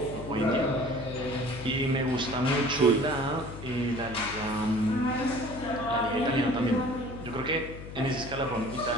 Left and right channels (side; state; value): left; noise; hum, 12 dB below the sound